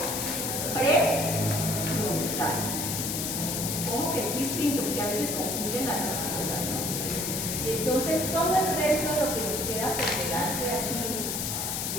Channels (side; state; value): left; noise; hiss, 1 dB below the sound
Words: prefrontal. Como que es distinto, porque a veces confunden las dos cosas, ¿no? Y entonces todo el resto de lo que nos queda por delante aquí,